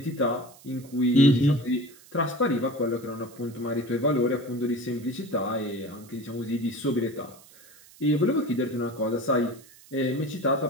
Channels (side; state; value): right; noise; hiss, 23 dB below the sound